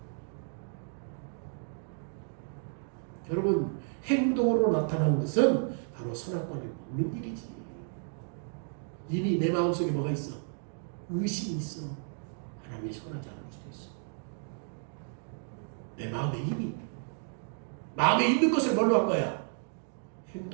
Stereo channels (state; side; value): silent; left; 56 dB below the other